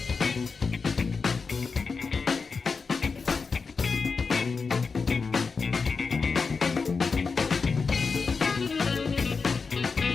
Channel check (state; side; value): quieter; right; 4.9 dB